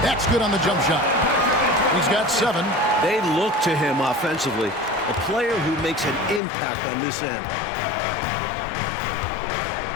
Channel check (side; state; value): right; drops out; at 6.4 s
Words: That's good on the jump shot. He's got 7. They look to him offensively. A player who makes an impact on this end.